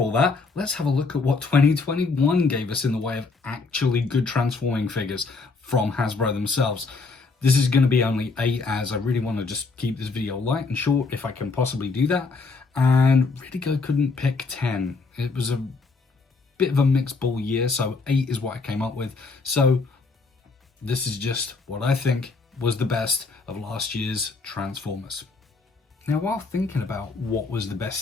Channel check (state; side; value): quieter; right; 4.1 dB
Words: that, let's have a look at what 2021 gave us in the way of actually good transforming figures from Hasbro themselves. This is going to be only 8, as I really want to just keep this video light and short if I can possibly do that. And Retgo couldn't pick 10. It was a bit of a mixed ball year, so 8 is what I came up with. So this is just what I think was the best of last year's Transformers. Now, while thinking about what was the